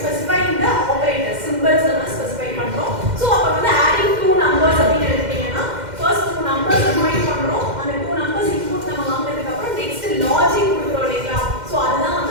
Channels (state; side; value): late; left; 2.1 ms